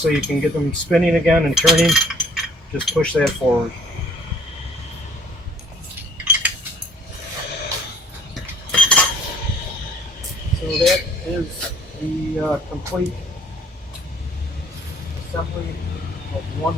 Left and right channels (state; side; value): normal; both; correlation 0.59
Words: you can get them spinning again and turning, just push that forward. So that is the complete assembly of